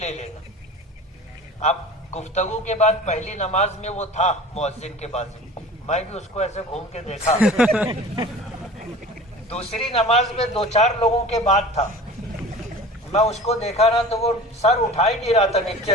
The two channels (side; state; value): both; normal; correlation 0.40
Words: لینا. اب گفتگو کے بعد پہلی نماز میں وہ تھا مؤذن کے بازو، میں بھی اس کو ایسے گھوم کے دیکھا. دوسری نماز میں 2-4 لوگوں کے بعد تھا، میں اس کو دیکھا نا تو وہ سر اٹھا ہی نہیں رہا تھا